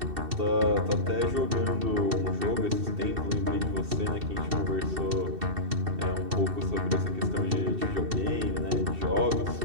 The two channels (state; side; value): late; left; 2.7 ms